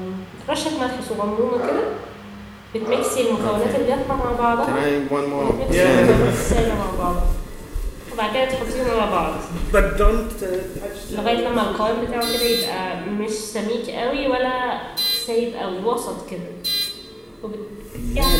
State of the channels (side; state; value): both; identical; correlation 1.00